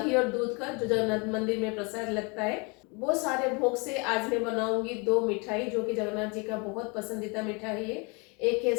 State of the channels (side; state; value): right; quieter; 30.9 dB